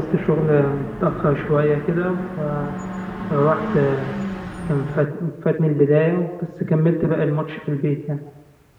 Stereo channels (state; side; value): identical; both; correlation 1.00